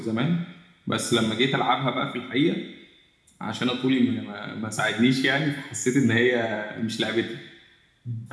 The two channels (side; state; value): both; identical; correlation 1.00